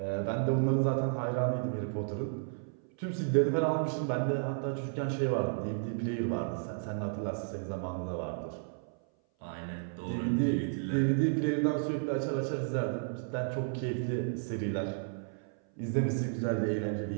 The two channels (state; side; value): silent; left; 56 dB below the other